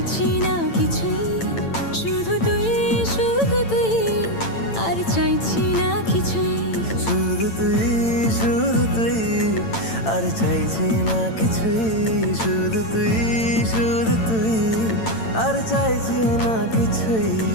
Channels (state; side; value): late; right; 8.9 ms